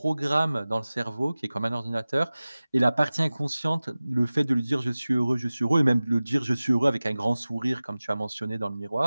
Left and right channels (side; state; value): both; inverted; correlation -0.98